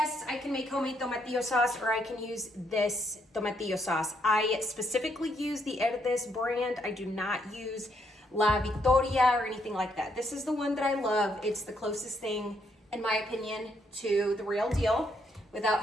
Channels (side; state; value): both; normal; correlation 0.74